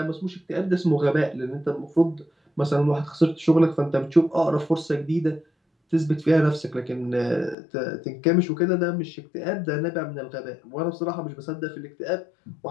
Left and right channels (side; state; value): right; drops out; at 7.6 s